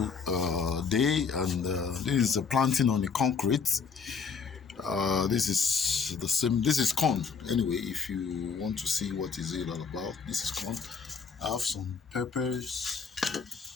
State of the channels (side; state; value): right; quieter; 5.7 dB